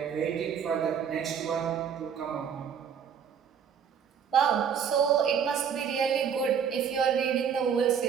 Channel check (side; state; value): left; quieter; 7.5 dB